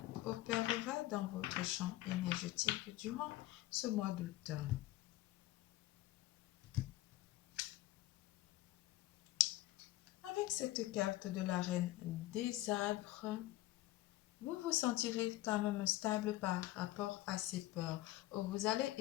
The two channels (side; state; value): right; quieter; 16.6 dB